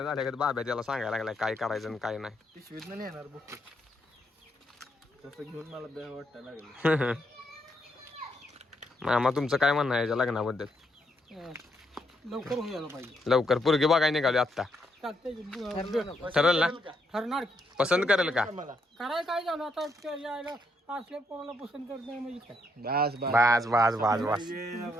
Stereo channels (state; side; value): normal; both; correlation 0.77